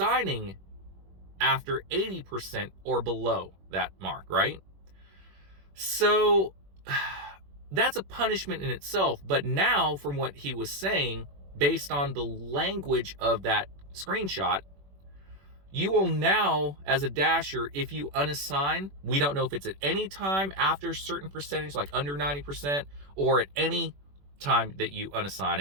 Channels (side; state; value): left; late; 21 ms